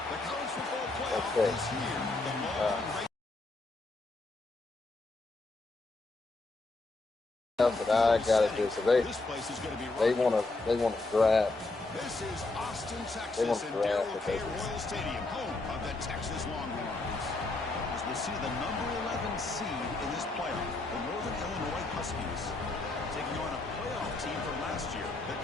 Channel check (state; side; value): quieter; right; 3.2 dB